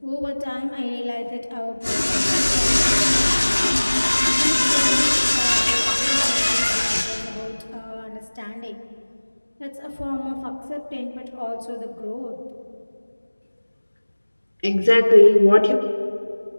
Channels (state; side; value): inverted; both; correlation -1.00